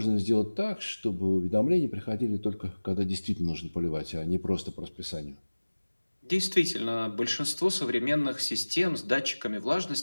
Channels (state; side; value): inverted; both; correlation -1.00